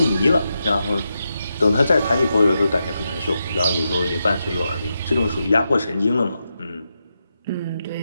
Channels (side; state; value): both; inverted; correlation -0.87